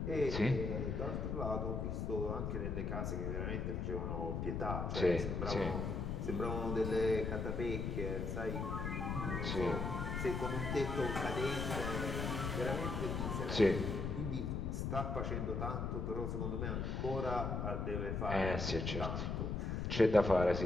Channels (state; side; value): noise; left; rumble, 1 dB below the sound